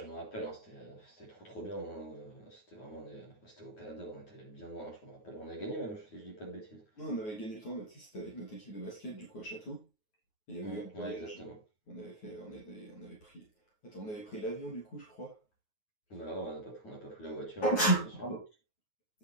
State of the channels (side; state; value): right; late; 9.4 ms